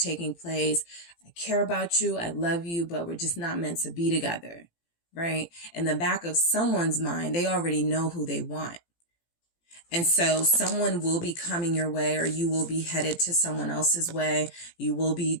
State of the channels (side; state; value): right; late; 17 ms